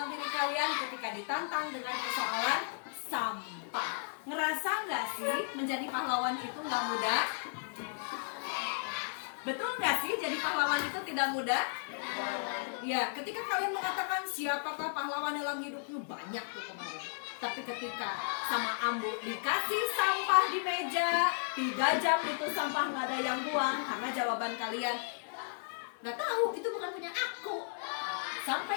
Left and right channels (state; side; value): silent; right; digital silence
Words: diri kalian ketika ditantang dengan persoalan sampah. Ngerasa nggak sih menjadi pahlawan itu nggak mudah? Betul nggak sih jadi pahlawan itu tidak mudah? Ya, ketika kalian mengatakan siapakah pahlawan dalam hidupmu, banyak tuh kemarin. Tapi ketika sama Ambu dikasih sampah di meja, 3 jam itu sampah nggak ada yang buang karena jawaban kalian nggak tahu, itu bukan punya aku. Sampai